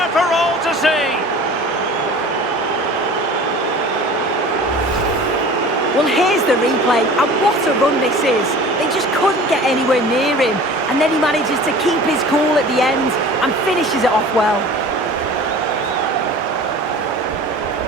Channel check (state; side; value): normal; both; correlation 0.42